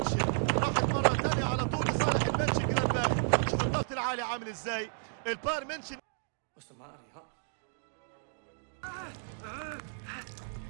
راحت مرة تانية على طول لصالح المنشن جلادباخ. شوف الضغط العالي عامل ازاي. البايرن منشن What's the matter, huh? I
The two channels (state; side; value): silent; left; digital silence